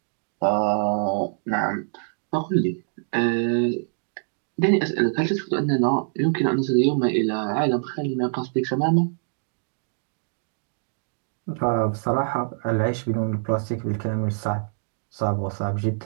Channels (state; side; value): silent; left; digital silence